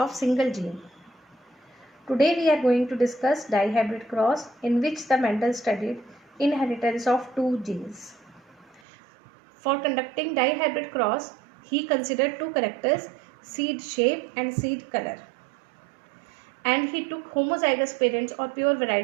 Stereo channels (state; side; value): drops out; left; at 8.8 s